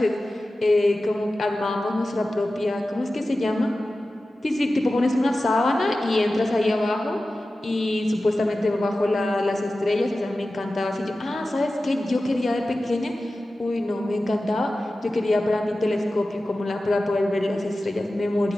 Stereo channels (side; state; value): both; normal; correlation 0.95